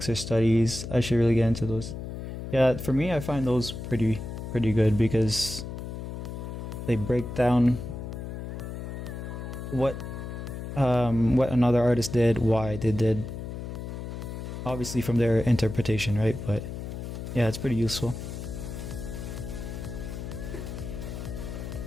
or studies. I should really get into those. Yeah, for me, I find those pretty good because they break down what another artist did, why they did, obviously from their interpretation, right? But yeah, it's pretty useful.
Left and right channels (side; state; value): left; noise; hum, 7 dB below the sound